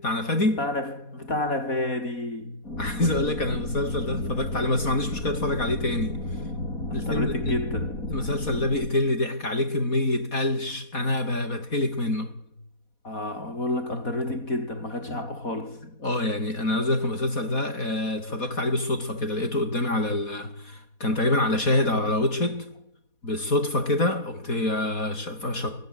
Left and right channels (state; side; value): late; right; 4.2 ms